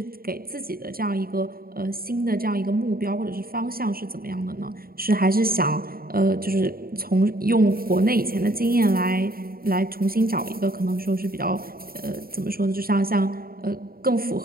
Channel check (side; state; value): left; late; 0.43 ms